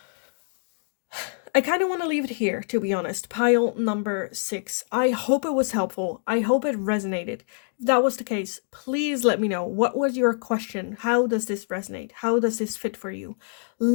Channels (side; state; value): right; silent; digital silence